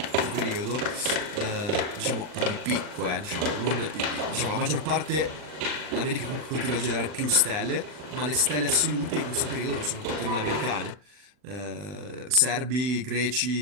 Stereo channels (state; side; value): late; left; 40 ms